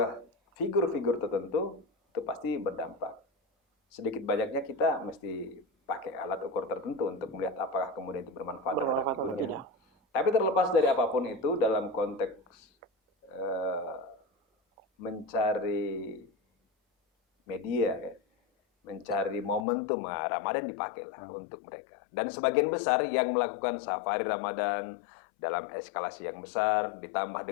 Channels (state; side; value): drops out; right; at 19.7 s